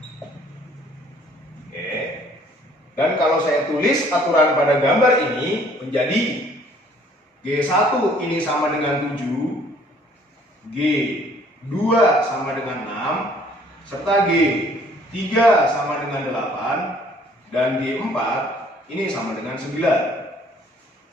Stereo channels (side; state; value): both; normal; correlation 0.58